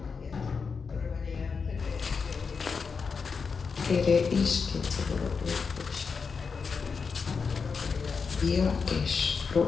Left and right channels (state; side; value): quieter; right; 5.3 dB